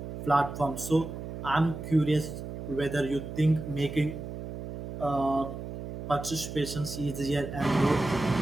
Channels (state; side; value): noise; right; hum, 8 dB below the sound